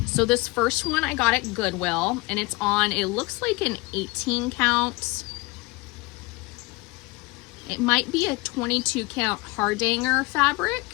So this first one I got at Goodwill, and it's on, it looks like an 18 count. It might be a 22 count Hardanger fabric,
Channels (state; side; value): quieter; right; 24.5 dB